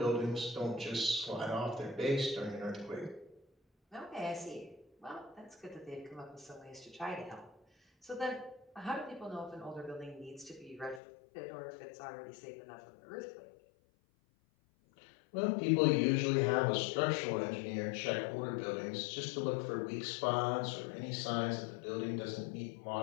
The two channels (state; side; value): drops out; right; at 11.0 s